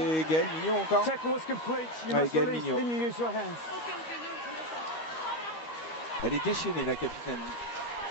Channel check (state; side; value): late; right; 13 ms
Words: Gaëlle Mignot encore. Ouais, Gaëlle Mignot. Elle est déchaînée, la capitaine.